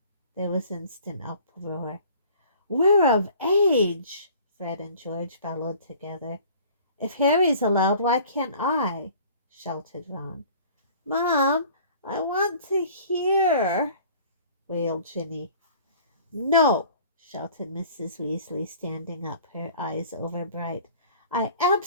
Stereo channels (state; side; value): inverted; both; correlation -0.50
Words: There was instant uproar. "We're of age!" Fred and George bellowed together. "If Harry's allowed, why can't I?" shouted Ron. "Mom, I want to hear," wailed Ginny. "No!" shouted Mrs. Weasley, standing up, her eyes overbright. "I